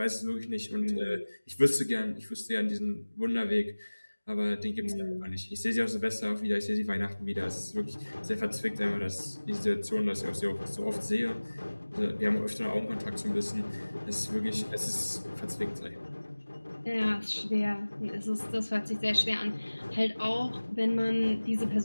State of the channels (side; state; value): both; inverted; correlation -1.00